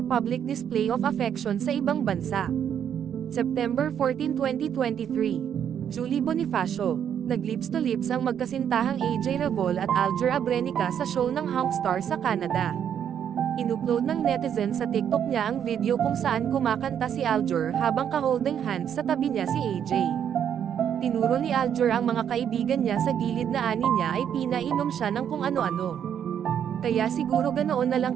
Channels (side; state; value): left; quieter; 8.9 dB